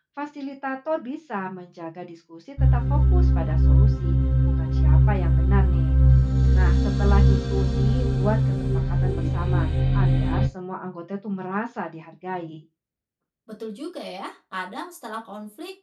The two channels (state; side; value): identical; both; correlation 1.00